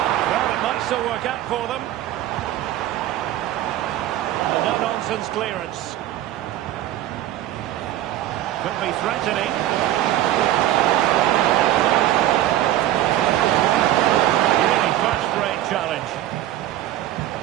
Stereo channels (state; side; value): quieter; left; 13.5 dB